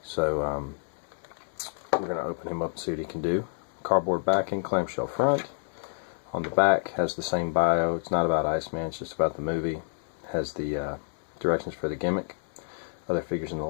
So we're going to open him up and see what he can do. Cardboard backing, clamshell front. On the back has the same bio. It's not about Iceman, it's just about the movie. Has the directions for the gimmick, other figures in the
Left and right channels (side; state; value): right; silent; digital silence